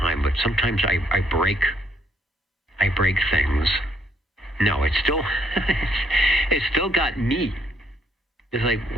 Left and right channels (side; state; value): both; normal; correlation 0.71